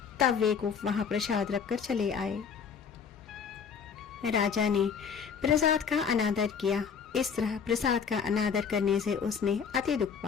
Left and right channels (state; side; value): quieter; right; 6.6 dB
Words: तब वे गोप वहां प्रसाद रखकर चले आए। राजा ने प्रसाद का अनादर किया। इस तरह प्रसाद का अनादर करने से उसने अति दुख